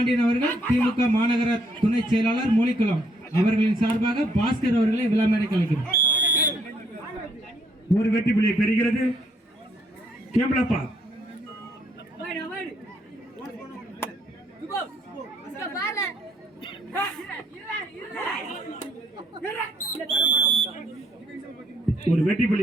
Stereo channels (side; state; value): both; normal; correlation 0.68